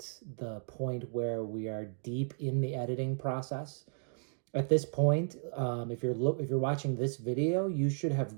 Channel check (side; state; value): left; silent; digital silence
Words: the point where we are deep in the editing process. At this point, if you're watching this video, you should have